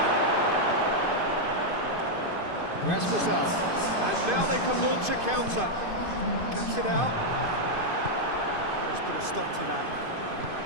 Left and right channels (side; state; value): left; late; 2.5 ms